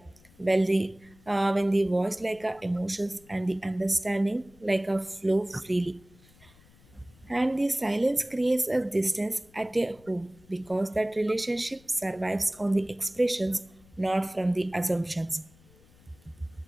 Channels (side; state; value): left; noise; rumble, 27 dB below the sound